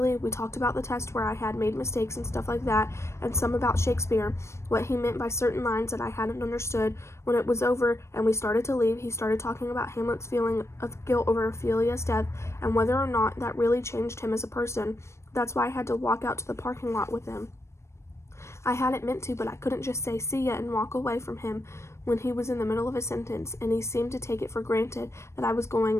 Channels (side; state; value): right; late; 0.13 ms